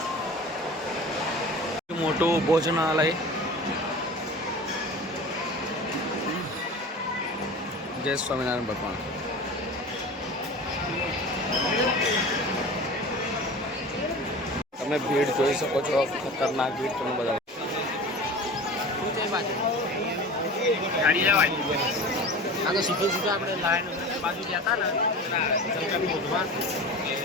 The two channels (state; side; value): normal; both; correlation 0.35